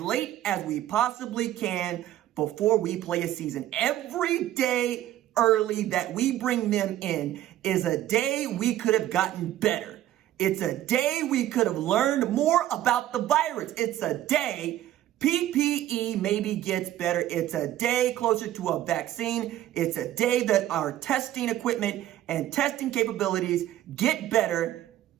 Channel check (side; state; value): left; quieter; 13.2 dB